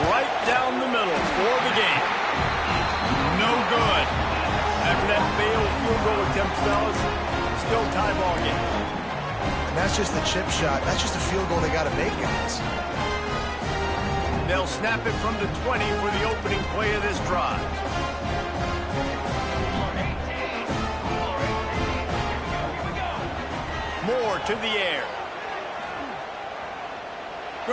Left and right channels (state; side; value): identical; both; correlation 1.00